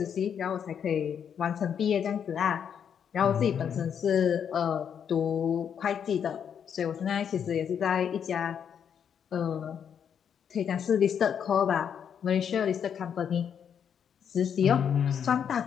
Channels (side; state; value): right; quieter; 8.0 dB